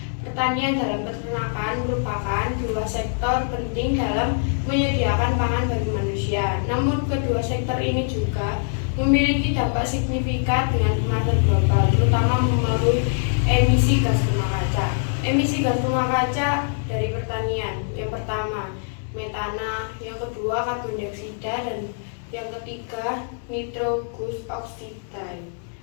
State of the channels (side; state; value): right; silent; digital silence